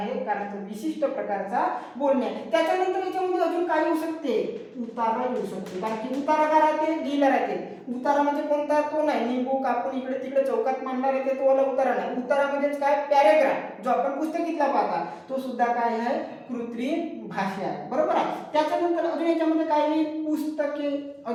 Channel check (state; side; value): identical; both; correlation 1.00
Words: कारण तो विशिष्ट प्रकारचा बोलणे. त्याच्यानंतर याच्यामध्ये अजून काय येऊ शकते? उतारा येऊ शकते. कारण की उतारा काय राहते? लिहिला राहते. उतारा म्हणजे कोणता? तो नाही निंबू कापून इकडे तिकडे चौकात मांडणार येते तो वाला उतारा नाही. उतारा म्हणजेच काय? पॅरेग्राफ, जो आपण पुस्तकीतला पाहता तो सुद्धा काय आहे? कृत्रिम भाषा आहे. बरोबर आहे. त्याच्यानंतर अजून याच्यामध्ये काय येईल? पुस्तके.